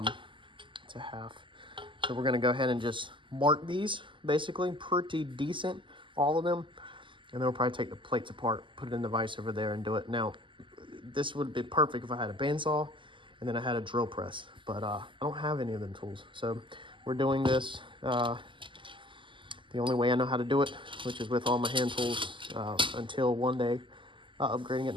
It's a half. So we're gonna go ahead and just mark these, basically pretty decent, all of them, and then we'll probably take the plates apart, put it in the vise over there, and do it. Now, this would be perfect if I had a bandsaw and then I had a drill press, but I don't have any of them tools. So we're doing this the only way I know how to do it, which is with all my hand tools, until one day upgrading at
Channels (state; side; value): late; left; 0.24 ms